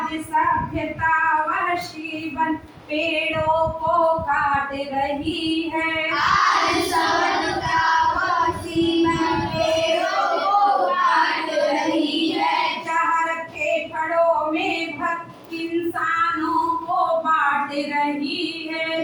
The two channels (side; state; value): both; identical; correlation 1.00